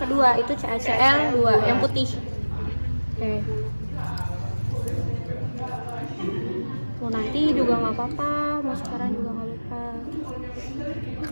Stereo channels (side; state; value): both; inverted; correlation -1.00